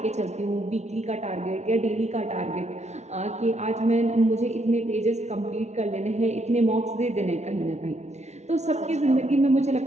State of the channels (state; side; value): late; left; 0.32 ms